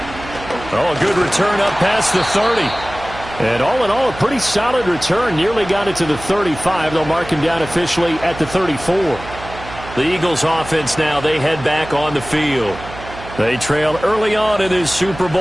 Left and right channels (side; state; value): right; noise; hum, 14 dB below the sound